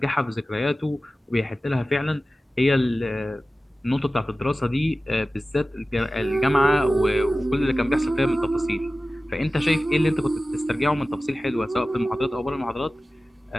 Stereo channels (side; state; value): both; normal; correlation 0.96